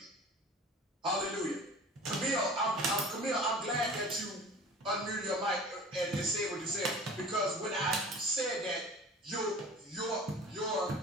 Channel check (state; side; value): normal; both; correlation 0.41